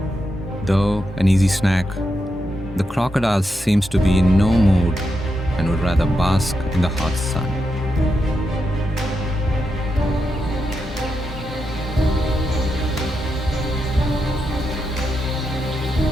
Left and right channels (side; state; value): both; normal; correlation 0.85